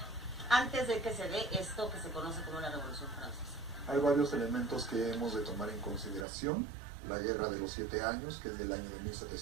antes de que se dé esto que se conoce como la Revolución Francesa? Hay varios elementos que hemos de tomar en consideración. La Guerra de los 7 años, que es del año de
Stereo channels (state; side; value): drops out; left; at 6.2 s